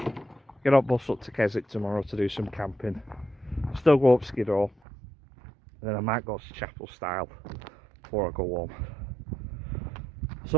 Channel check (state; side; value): drops out; left; at 4.8 s